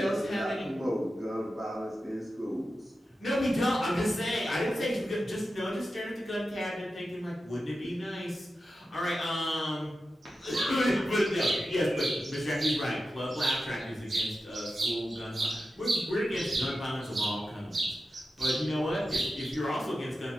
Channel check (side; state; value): both; normal; correlation 0.92